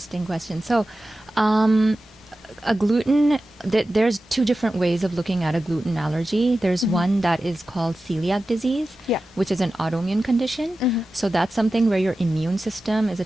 question. So a gluten, there's two different ways of looking at a gluten allergy. There's one that is called celiac disease, which is an autoimmune condition. So that's something where your immune system is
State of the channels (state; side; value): normal; both; correlation 0.94